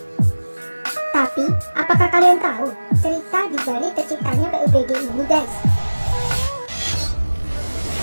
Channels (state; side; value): inverted; both; correlation -1.00